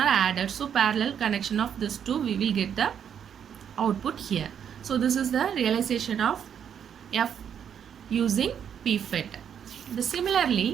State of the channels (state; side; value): quieter; left; 8.4 dB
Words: added. So parallel connection of this two, we will get the output here. So this is the realization of F using PFET.